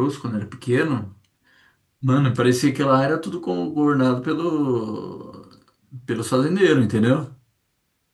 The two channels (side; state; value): both; identical; correlation 1.00